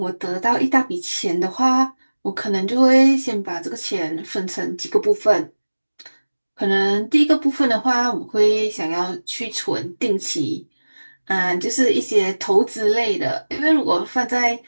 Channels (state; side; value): inverted; both; correlation -1.00